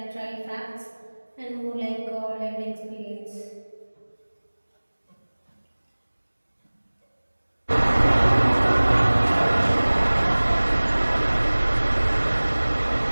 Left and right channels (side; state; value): both; inverted; correlation -1.00